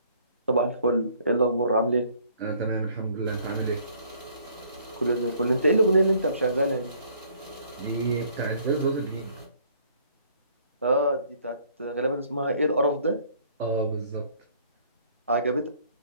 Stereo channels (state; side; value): inverted; both; correlation -0.60